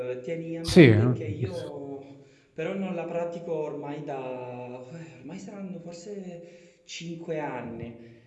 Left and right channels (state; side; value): identical; both; correlation 1.00